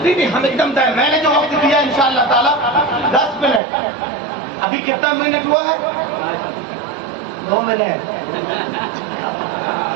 نہیں ہم ایک دم میں نے جو وقت دیا انشاءاللہ تعالیٰ 10 منٹ. ابھی کتنا منٹ ہوا ہے؟ 2 منٹ.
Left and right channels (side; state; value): left; drops out; at 3.6 s